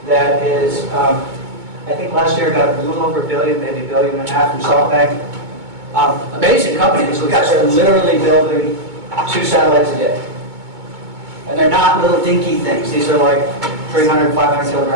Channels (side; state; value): left; late; 2.2 ms